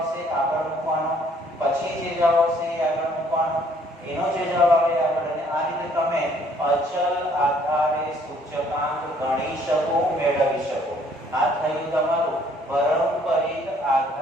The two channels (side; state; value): both; normal; correlation 0.62